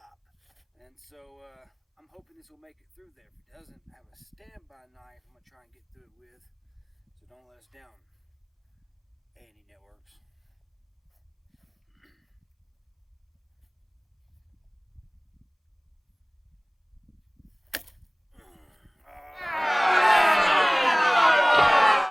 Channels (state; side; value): identical; both; correlation 1.00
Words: And so I'm hoping this will make it through there. If it doesn't, I have a standby knife I'm going to try and get through it with, so don't let us down, A&E Networks.